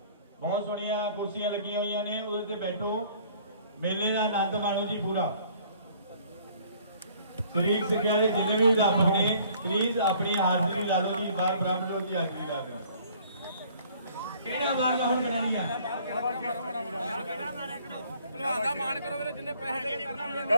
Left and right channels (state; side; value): inverted; both; correlation -0.56